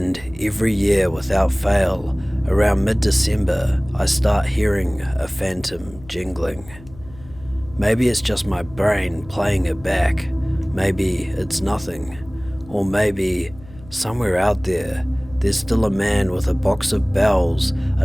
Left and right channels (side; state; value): left; noise; hum, 20 dB below the sound